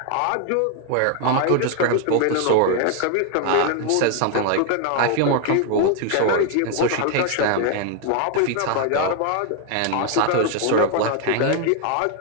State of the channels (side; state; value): both; different; correlation 0.00